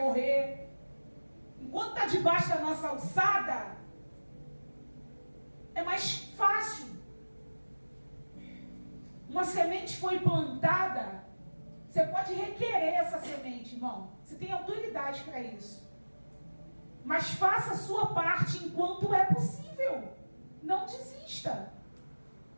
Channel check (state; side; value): inverted; both; correlation -1.00